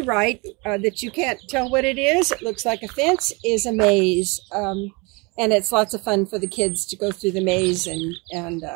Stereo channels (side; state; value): left; quieter; 27.9 dB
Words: right, that you can't tell what it is, it looks like a fence, is a maze. And it's lots of fun for the kids to go through the maze and